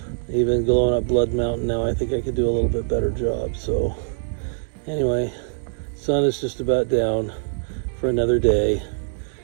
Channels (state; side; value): silent; left; digital silence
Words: even going up Blood Mountain now, I think I could do a little bit better job. So anyway, sun is just about down for another day,